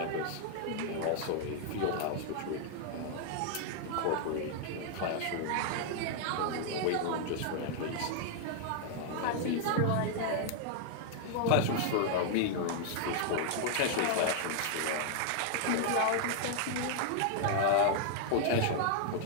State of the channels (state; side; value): different; both; correlation 0.00